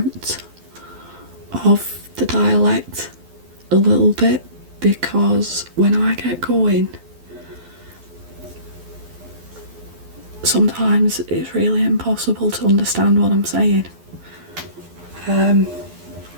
of the dialect a little bit, because when I get going, sometimes it's really impossible to understand what I'm saying.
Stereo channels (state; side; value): late; left; 12 ms